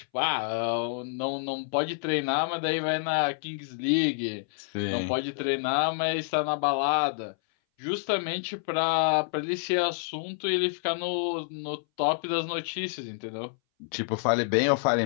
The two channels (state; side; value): silent; right; 59 dB below the other